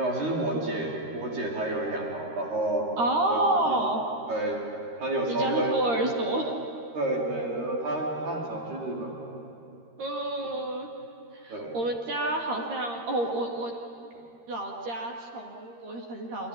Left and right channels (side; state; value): left; late; 13 ms